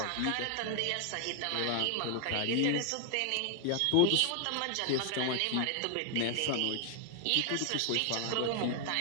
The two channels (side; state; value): both; different; correlation 0.00